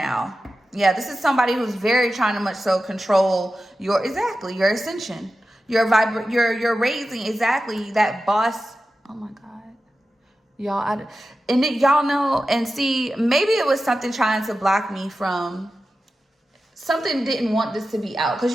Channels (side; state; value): both; normal; correlation 0.93